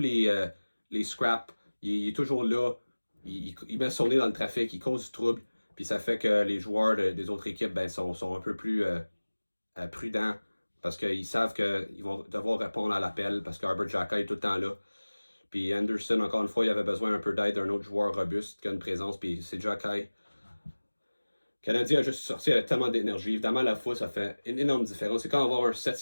scraps. Il est toujours là. Il met son nez dans le trafic. Il cause du trouble. Puis ça fait que les joueurs des autres équipes sont un peu plus prudents parce qu'ils savent qu'ils vont devoir répondre à l'appel parce qu'Herbert Jokai est tout le temps là. Puis Anderson, encore une fois, il avait besoin un peu d'aide d'un autre joueur robuste qui a une présence. Puis c'est Jokai. Le Canadien a juste sorti avec tellement d'énergie. Évidemment, la fois, ça fait une énorme différence. C'est quand on va avoir un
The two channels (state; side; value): inverted; both; correlation -1.00